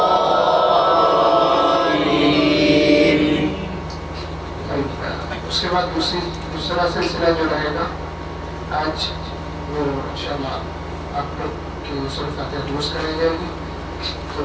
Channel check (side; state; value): both; identical; correlation 1.00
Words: اس کے بعد دوسرا سلسلہ جو رہے گا آج وہ انشاءاللہ آپ لوگ کی سورۃ فاتحہ درست کرائی جائے گی. تو